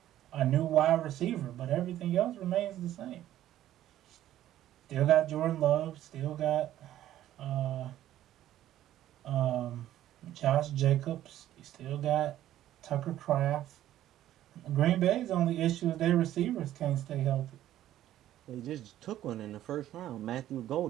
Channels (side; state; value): left; quieter; 12.9 dB